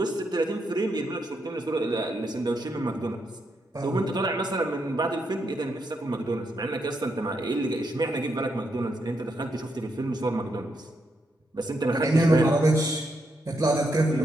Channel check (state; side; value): normal; both; correlation 0.80